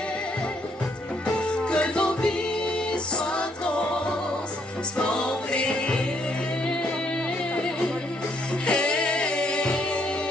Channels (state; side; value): normal; both; correlation 0.70